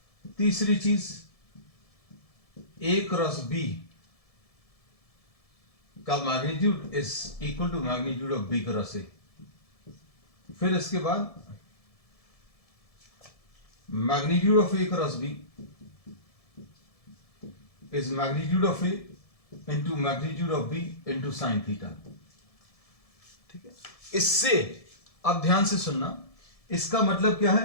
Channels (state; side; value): late; right; 1.7 ms